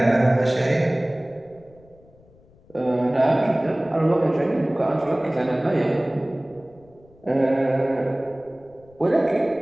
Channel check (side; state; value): left; noise; rumble, 28 dB below the sound